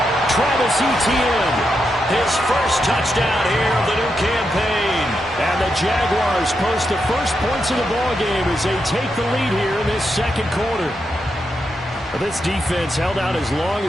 Travis Etienne, his first touchdown here of the new campaign. And the Jaguars post the first points of the ballgame as they take the lead here in this second quarter. This defense held out as long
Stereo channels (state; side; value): normal; both; correlation 0.84